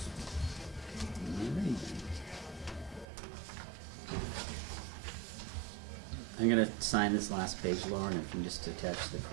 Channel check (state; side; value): drops out; left; at 3.1 s